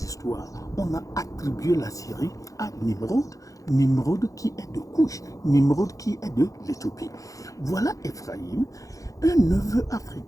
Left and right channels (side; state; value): right; late; 0.16 ms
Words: histoires, on a attribué la Syrie à Nimrod. Nimrod qui est de Couche, Nimrod qui est de l'Éthiopie. Voilà Éphraïm, un neveu